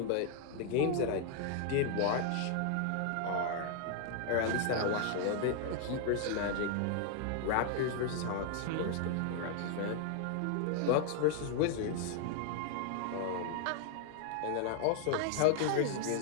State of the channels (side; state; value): both; different; correlation 0.00